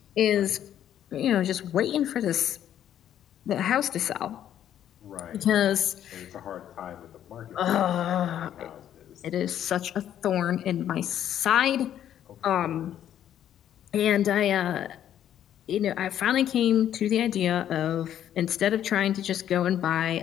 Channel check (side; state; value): right; quieter; 10.6 dB